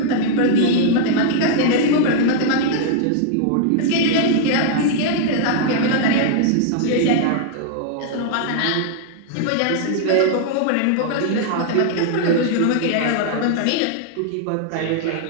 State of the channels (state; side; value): different; both; correlation -0.01